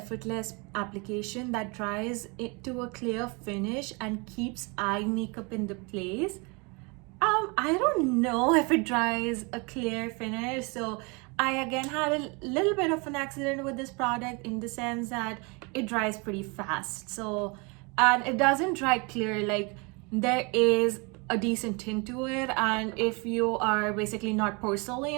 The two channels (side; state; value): left; quieter; 29.9 dB